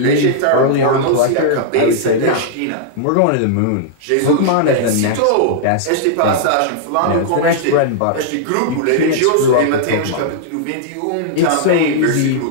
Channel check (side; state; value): both; different; correlation -0.01